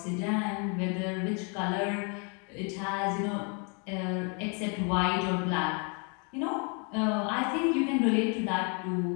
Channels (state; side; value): quieter; right; 36.2 dB